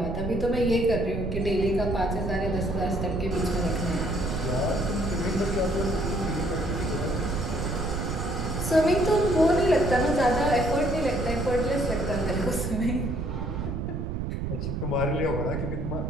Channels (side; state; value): right; noise; rumble, 3 dB below the sound